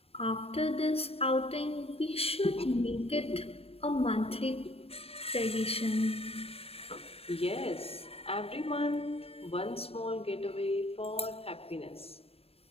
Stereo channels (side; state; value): right; late; 0.28 ms